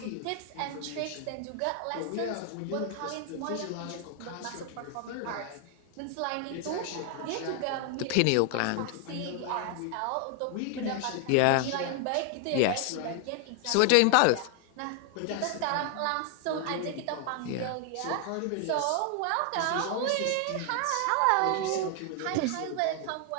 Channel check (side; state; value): both; different; correlation 0.00